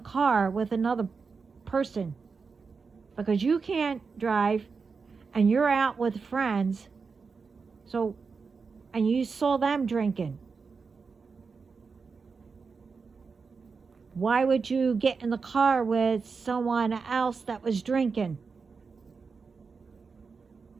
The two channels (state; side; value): quieter; left; 5.0 dB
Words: with another person because you can't drive and you're out with friends, and you saw them drinking. Why would you get in the car with someone else that was drinking?